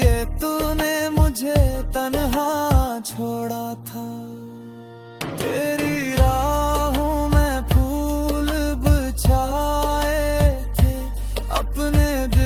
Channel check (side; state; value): both; identical; correlation 1.00